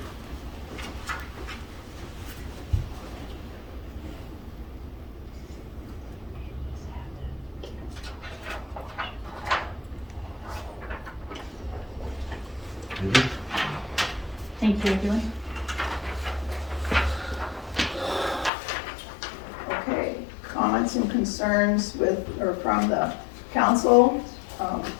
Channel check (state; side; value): drops out; right; at 18.5 s